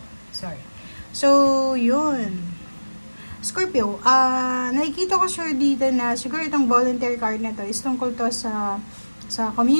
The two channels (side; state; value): both; inverted; correlation -1.00